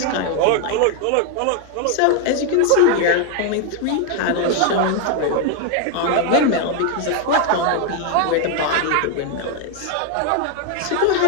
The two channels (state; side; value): different; both; correlation 0.01